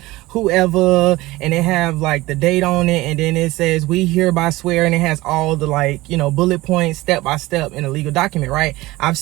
whoever, and it have like the date on it, and then it says we hereby swear, and it has all the, like, you know, bullet points step by step in a legal document, right? I've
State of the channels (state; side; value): quieter; left; 19.2 dB